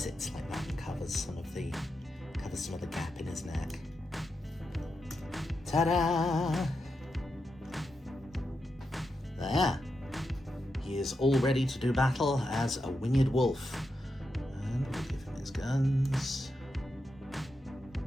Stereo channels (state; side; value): normal; both; correlation 0.86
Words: like that and covers some of the gap in his neck. Ta-da! There. He is all ready to do battle as a winged wolf. And we'll give him his guns.